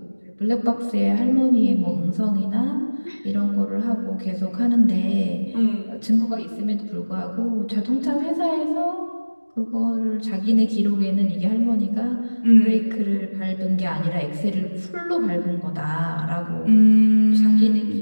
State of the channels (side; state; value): both; inverted; correlation -1.00